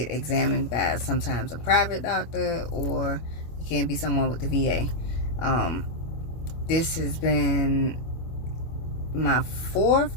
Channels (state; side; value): late; right; 25 ms